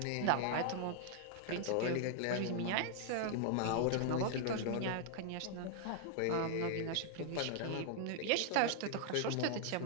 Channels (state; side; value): different; both; correlation 0.00